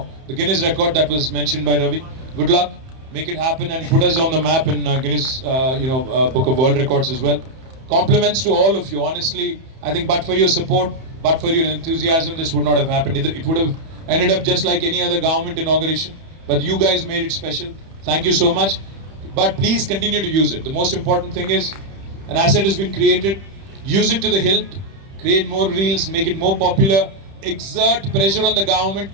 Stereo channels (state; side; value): late; left; 31 ms